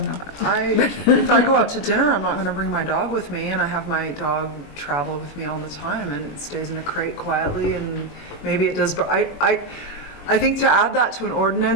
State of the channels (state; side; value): late; right; 21 ms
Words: know. If I go out to dinner, I'm not going to bring my dog with me, and I have my dog travel with me all the time, and it stays in a crate quietly, and maybe it does. But I think to add that to an